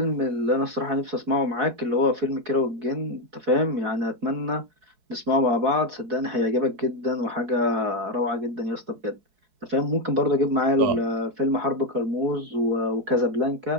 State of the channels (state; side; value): late; left; 4.7 ms